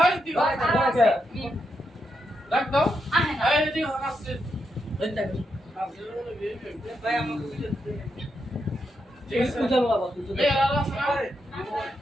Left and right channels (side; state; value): both; normal; correlation 0.83